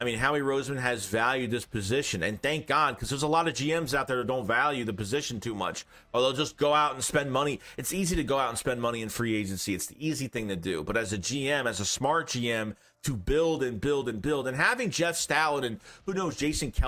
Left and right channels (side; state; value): both; identical; correlation 1.00